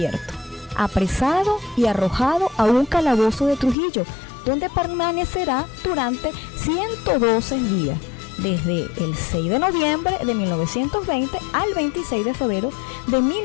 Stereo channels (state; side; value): drops out; right; at 3.8 s